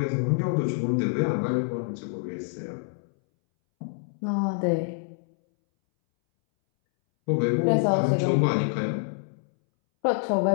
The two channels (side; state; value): right; silent; 61 dB below the other